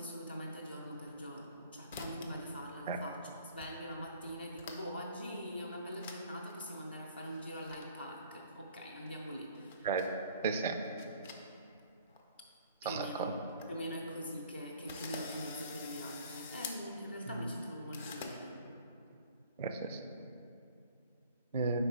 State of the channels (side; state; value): both; inverted; correlation -0.54